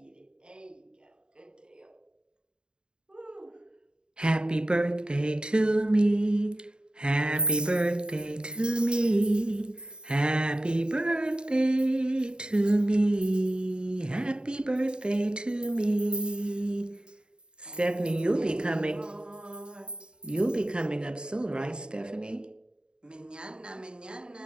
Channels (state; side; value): late; left; 0.049 ms